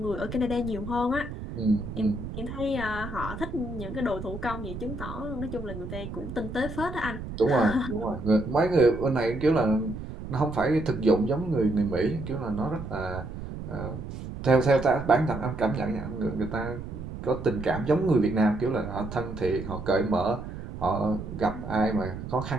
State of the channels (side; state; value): right; noise; rumble, 9 dB below the sound